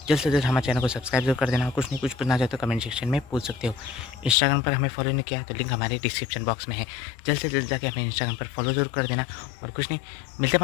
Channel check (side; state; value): right; drops out; at 4.4 s